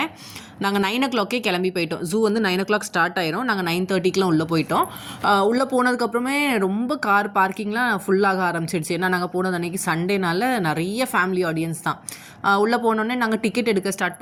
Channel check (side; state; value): both; identical; correlation 1.00